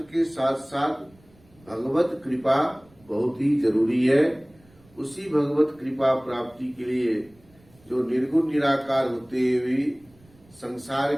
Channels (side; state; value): right; noise; rumble, 29 dB below the sound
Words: के साथ साथ भगवत कृपा बहुत ही जरूरी है। उसी भगवत कृपा प्राप्ति के लिए जो निर्गुण निराकार होते हुए संसार